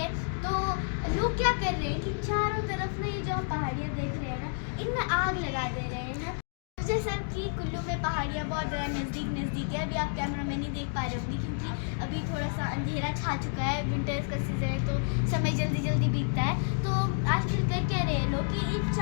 तो लोग क्या कर रहे हैं कि चारों तरफ ना ये जो हम पहाड़ियाँ देख रहे हैं ना, इनमें आग लगा दे रहे हैं ना। जैसा कि कुल्लू में पहाड़ियाँ बहुत ज़्यादा नज़दीक है। अभी आप कैमरा में नहीं देख पा रहे होंगे क्योंकि अभी थोड़ा सा अंधेरा छा चुका है। विंटर्स का सीज़न है तो समय जल्दी बीतता है। तो आजकल कर क्या रहे हैं लोग कि इन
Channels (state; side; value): silent; right; 58 dB below the other